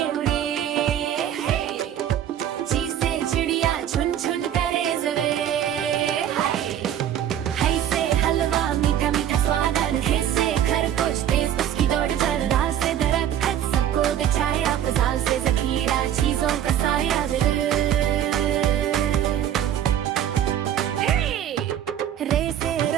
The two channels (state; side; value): quieter; left; 10.5 dB